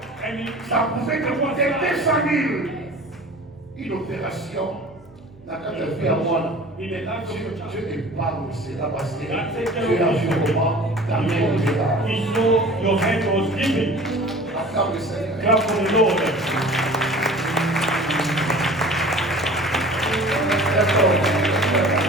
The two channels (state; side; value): noise; right; hum, 26 dB below the sound